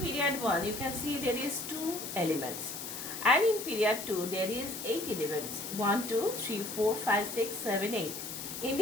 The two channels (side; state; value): left; noise; hiss, 7 dB below the sound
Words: 1 you can see there is 2 elements. And in period 2 there is 8 elements. 1, 2, 3, 4, 5, 6, 7, 8. In